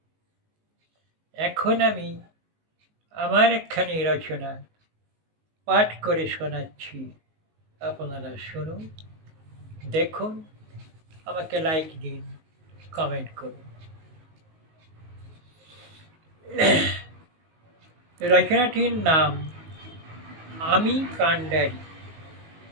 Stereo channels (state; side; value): late; left; 19 ms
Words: এখন আমি আমার একখানি রচনা পাঠ করে শোনাচ্ছি। আপনারা শুনুন, দেখুন, আমাকে লাইক দিন, কমেন্ট করুন। রচনাটির নাম আমি কান্ডারি।